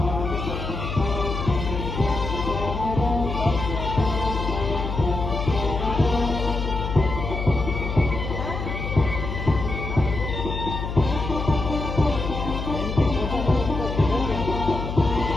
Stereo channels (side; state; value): left; noise; hum, 4 dB below the sound